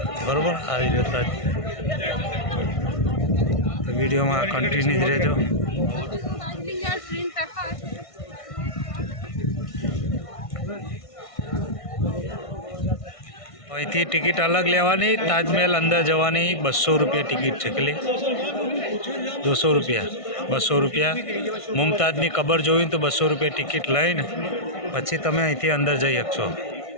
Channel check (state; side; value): late; right; 1.6 ms